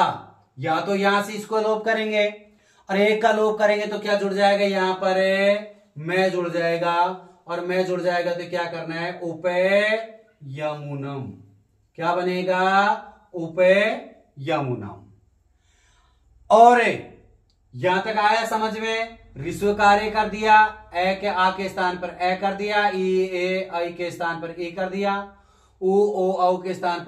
या तो यहां से इसको लोप करेंगे और एक का लोप करेंगे तो क्या जुड़ जाएगा? यहां पर मैं जुड़ जाएगा और मैं जुड़ जाएगा तो क्या करना है, उपेयमुनम। क्या बनेगा, उपेयमुनम। और यहां तक आया समझ में, ऋस्व कार्य कर दिया, ए के आ के स्थान पर ए कर दिया, ई ए आई के स्थान पर ए कर दिया, उ ओ औ के स्थान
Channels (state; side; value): identical; both; correlation 1.00